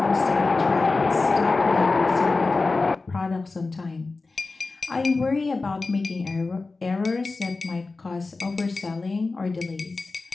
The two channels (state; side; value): quieter; right; 3.7 dB